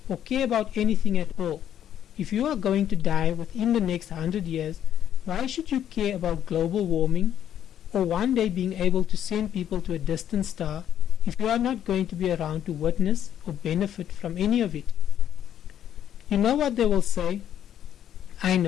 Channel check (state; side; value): quieter; right; 10.2 dB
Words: or care about anything at all? If you are going to die within the next 100 years, why should you care about global warming or one day being able to send people to a distant star if you are not going to be around to witness or benefit from any of it? You know what they will say? I